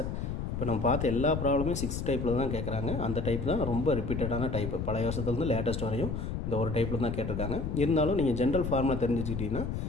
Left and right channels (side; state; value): left; noise; rumble, 3 dB below the sound